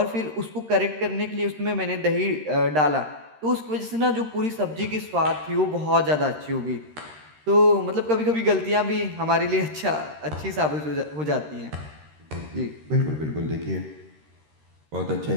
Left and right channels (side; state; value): left; late; 13 ms